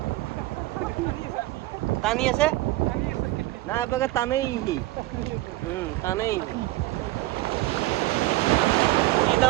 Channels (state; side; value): quieter; left; 18.0 dB